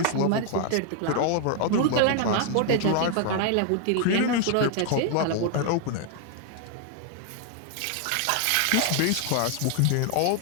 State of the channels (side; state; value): both; different; correlation 0.00